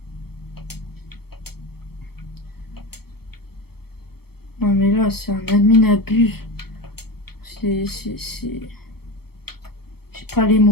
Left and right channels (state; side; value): late; right; 0.96 ms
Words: Non mais là, c'est un admin abuse. C'est... J'ai pas les